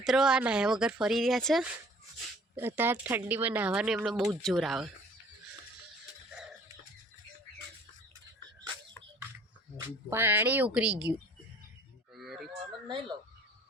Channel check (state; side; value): normal; both; correlation 0.53